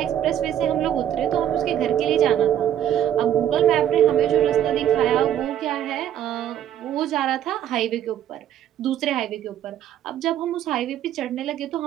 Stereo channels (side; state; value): left; quieter; 10.7 dB